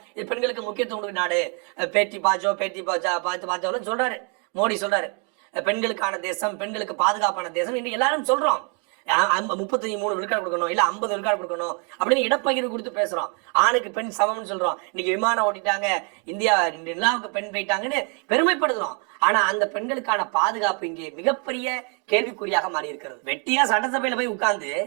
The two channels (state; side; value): quieter; left; 36.4 dB